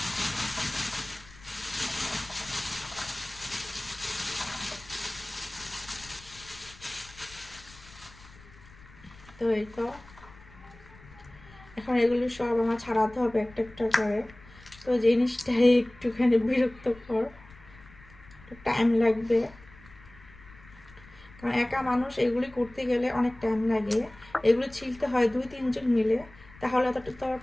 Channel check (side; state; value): left; noise; rumble, 22 dB below the sound